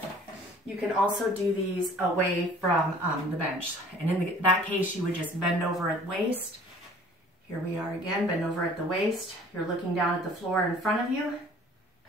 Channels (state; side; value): normal; both; correlation 0.51